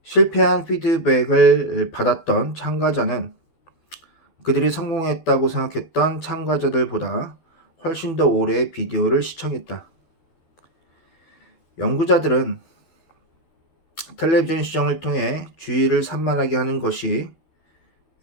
실패한 피드백을 받았던 참가자는 그들이 성공했다고 생각했던 참가자들보다 훨씬 더 오래 비디오를 시청했다. 연구자들은 텔레비전 시청을 통해 주의를 산만하게 하는 것이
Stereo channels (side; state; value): right; late; 12 ms